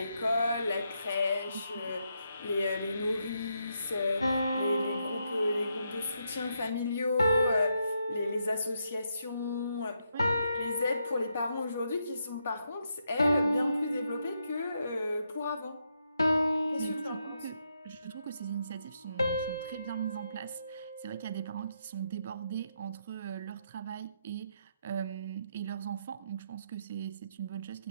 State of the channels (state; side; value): inverted; both; correlation -0.80